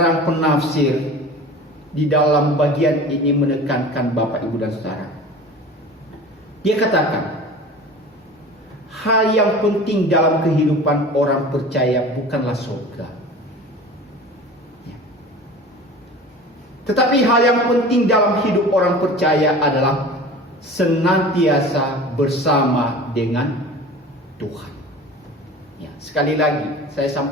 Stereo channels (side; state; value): both; normal; correlation 0.38